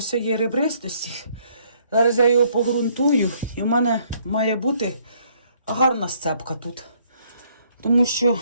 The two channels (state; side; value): inverted; both; correlation -0.66